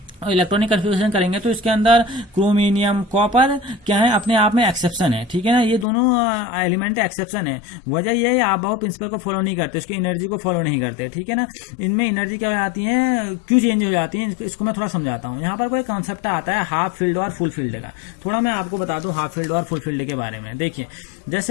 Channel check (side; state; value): right; drops out; at 5.9 s